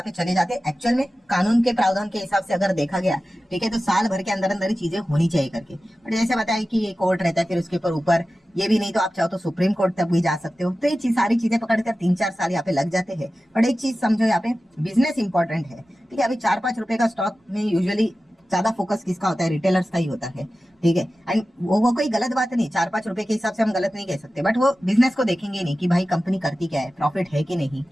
पे चले जाते। एक्चुअल में कानून के प्रावधान के हिसाब से अगर देखा गया, ठीक है, तो साल भर के अंदर अंदर ही चीजें होनी चाहिए करके। बट जैसे बताया कि ये कोर्ट रहता है, फिर उसके ऊपर ये भी नहीं तो आप चाहो तो सुप्रीम कोर्ट तक भी जा सकते हो। तो ये सारी चीजें पकड़कर 3-4 साल यहाँ पे लग जाते हैं। बट एक चीज समझो, यहाँ पे बिजनेस इंपॉर्टेंट है, ठीक है। अभी 4-5 रुपए का स्टॉक में यूजुअली ज्यादा फोकस किसका होता है, रिटेलर्स का ही होता है, ठीक है। एंड वो कोई गलत बात नहीं, 4-5 रुपए के हिसाब से हम गलत नहीं कह सकते, बट वो बिजनेस को देखेंगे नहीं कि भाई कंपनी करती क्या है, प्रॉफिट है कि नहीं,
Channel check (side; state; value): both; normal; correlation 0.94